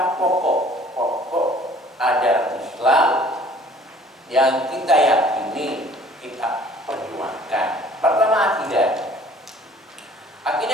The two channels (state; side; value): normal; both; correlation 0.53